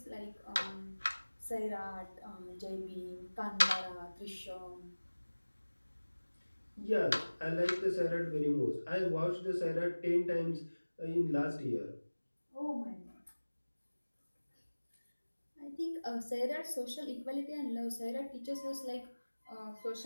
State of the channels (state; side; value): inverted; both; correlation -1.00